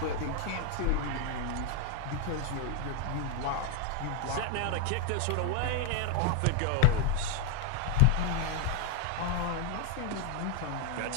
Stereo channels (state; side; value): different; both; correlation 0.00